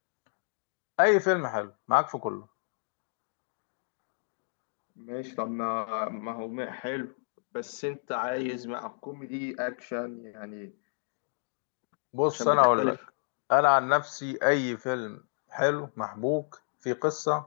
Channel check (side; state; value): right; silent; digital silence